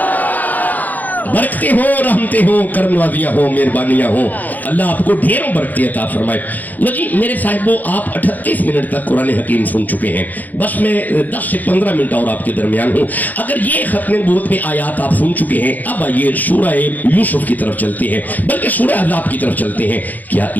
برکتیں ہوں, رحمتیں ہوں, کرم نوازیاں ہوں, مہربانیاں ہوں. اللہ آپ کو ڈھیروں برکتیں عطا فرمائے. لو جی میرے صاحبو, آپ 38 منٹ تک قرآن حکیم سن چکے ہیں. بس میں 10 سے 15 منٹ اور آپ کے درمیان ہوں. اگر یہ ختم نبوت میں آیات آپ سن چکے ہیں, اب آئیے سورہ یوسف کی طرف چلتے ہیں, بلکہ سورہ احزاب کی طرف چلتے ہیں. کیا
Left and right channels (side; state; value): right; late; 0.082 ms